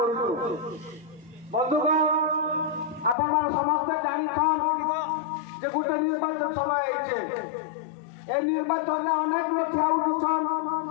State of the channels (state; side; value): drops out; right; at 3.2 s